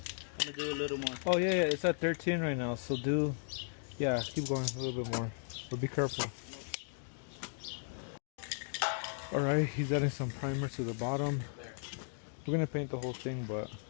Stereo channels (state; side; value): silent; right; digital silence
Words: I'm gonna do a little more. Oh yeah, it's at 13 right now, so keep going a little bit more. But be careful. Alright, he's adding some primer to the bottom. We're gonna paint the whole thing, but